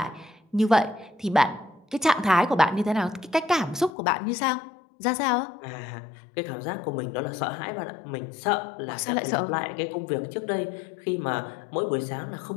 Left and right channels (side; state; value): right; drops out; at 3.9 s